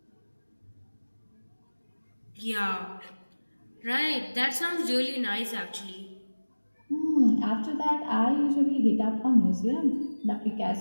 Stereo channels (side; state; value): both; inverted; correlation -1.00